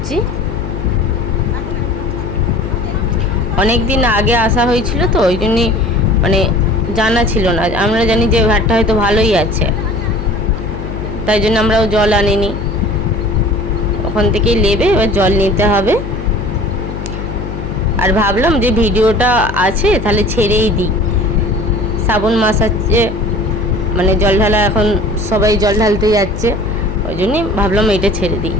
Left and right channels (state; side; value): noise; left; hum, 7 dB below the sound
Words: অনেক দিন আগে আসা হয়েছিল তো ওই জন্যই মানে জানা ছিল না। আমরা জানি যে ঘাটটা হয়তো ভালোই আছে, তাই জন্য আমরাও জল আনিনি। ওখান থেকেই নেবে, এবার জল নিতে হবে। আর ভাবলাম যে ভিডিওটা আছে তাহলে ছেড়েই দিই, শ্রাবণ মাস আছে মানে জল ঢালা, এখন সবাই জল ঢালতে যাচ্ছে, ওই জন্যই ভাবলাম এটা ছেড়ে দিই।